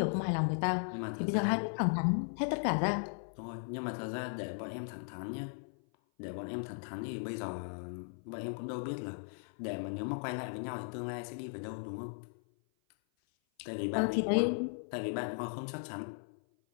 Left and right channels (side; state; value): right; silent; 53 dB below the other